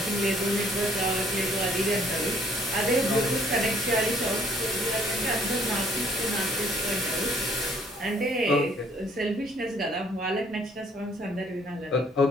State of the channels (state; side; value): normal; both; correlation 0.62